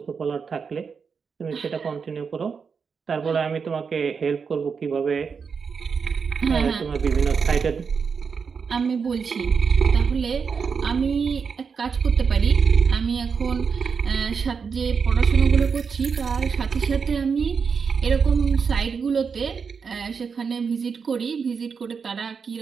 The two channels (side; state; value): left; quieter; 5.8 dB